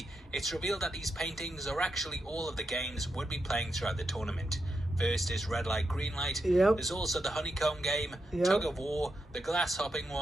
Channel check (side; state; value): both; normal; correlation 0.85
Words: it's revealed that these paintings are actually all of the games would be playing throughout the tournament. First is red light, green light. Yep. There's also the honeycomb game, yep, tug of war, the glass hopping